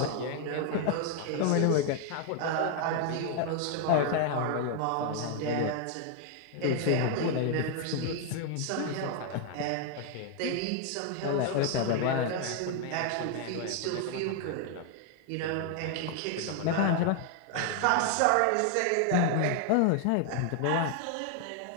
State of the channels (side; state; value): both; different; correlation 0.00